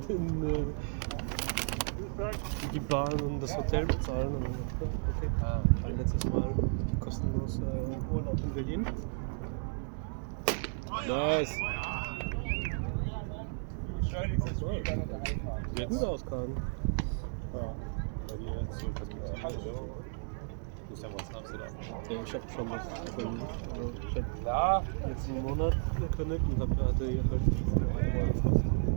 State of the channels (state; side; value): silent; left; 55 dB below the other